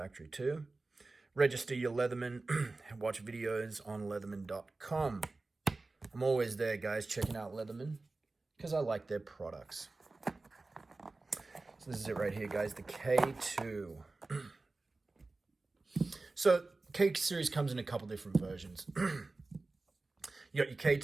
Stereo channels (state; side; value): quieter; left; 3.4 dB